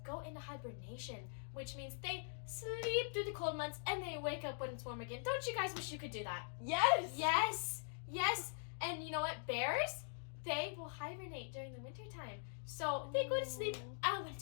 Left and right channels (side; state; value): right; silent; digital silence